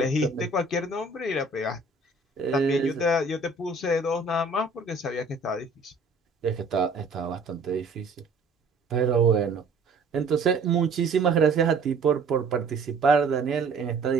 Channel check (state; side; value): quieter; left; 3.6 dB